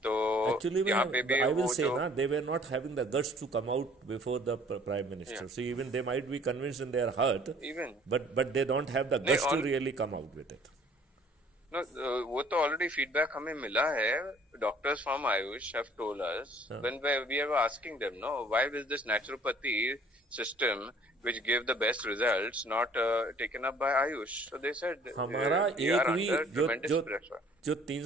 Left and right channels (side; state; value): both; normal; correlation 0.55